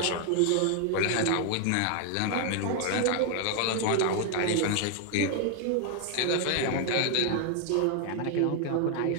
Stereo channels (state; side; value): different; both; correlation 0.00